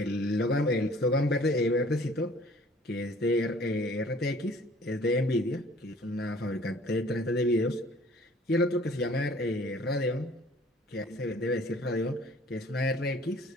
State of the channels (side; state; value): both; normal; correlation 0.53